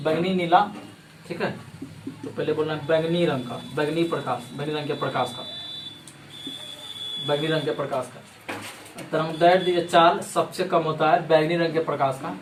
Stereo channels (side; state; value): both; identical; correlation 1.00